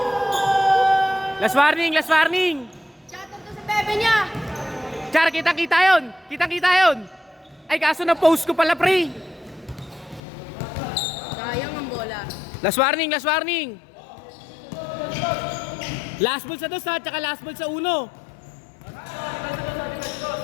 Last warning, last warning. Shoutout to sa bebe niya. Char, kitang-kita yun. Kitang-kita yun. Ay, kaso na post ko pala, pre. Sayang ang bola. Last warning, last warning. Last ball sa 2 ha, tsaka last ball sa 1.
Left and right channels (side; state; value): right; drops out; at 10.2 s